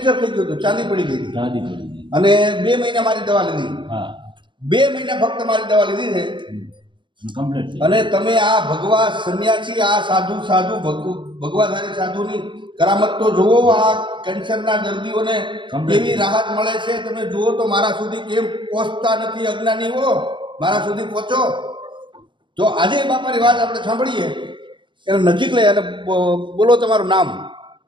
થઈ ગયું હતું, ચાંદી પડી ગઈ હતી ચાંદી પડી ગઈ. અને 2 મહિના મારી દવા લીધી. હા, 2 મહિના ફક્ત મારી દવા લીધી છે કમ્પ્લીટ. અને તમે આ ભગવા સંન્યાસી, આ સાધુ ભગવાધારી સાધુની કરામત તો જુઓ. આ કેન્સરના દર્દીઓને કેવી રાહત મળે છે તમે જુઓ તો. મારા સુધી કેમ પહોંચતા નથી અજ્ઞાનીઓ? મારા સુધી પહોંચો. તો આજે બાપાની વાત આપણે સાંભળીએ. એને નજીક લઈ અને બોલો તમારું નામ.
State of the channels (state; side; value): late; left; 0.23 ms